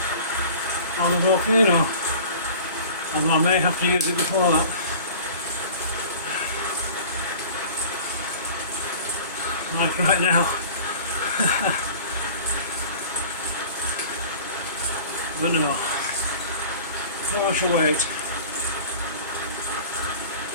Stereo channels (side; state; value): both; inverted; correlation -0.43